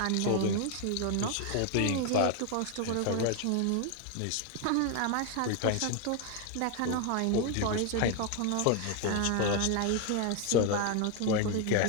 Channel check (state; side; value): different; both; correlation 0.01